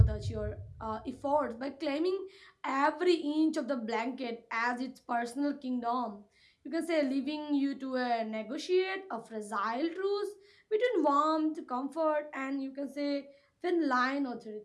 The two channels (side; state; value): both; identical; correlation 1.00